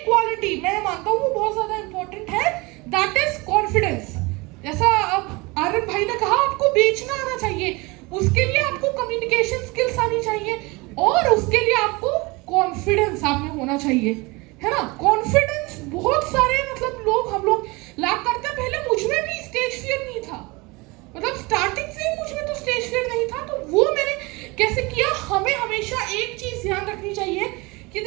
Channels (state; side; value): quieter; left; 24.9 dB